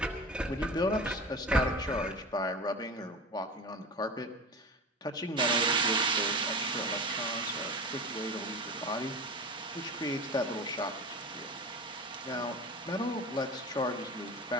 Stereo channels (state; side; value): normal; both; correlation 0.30